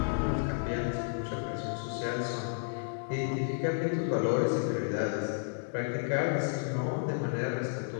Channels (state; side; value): silent; right; 56 dB below the other